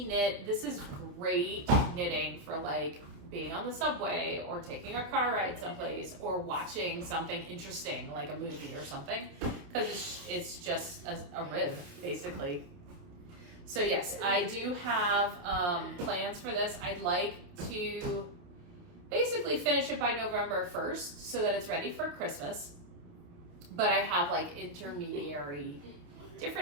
knit. This is great knitting for like being on the subway or taking a car ride someplace or watching something interesting like a movie or something, because it's just a rib basically. So yes, I do have plans for this. I'd like to basically finish it by November 1st so that it's ready for Christmas, but I have like intermediary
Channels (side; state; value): left; late; 28 ms